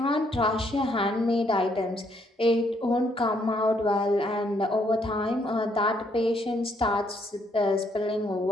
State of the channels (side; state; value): both; normal; correlation 0.71